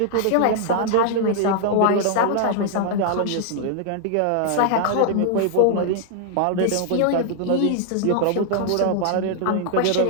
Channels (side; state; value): both; different; correlation 0.00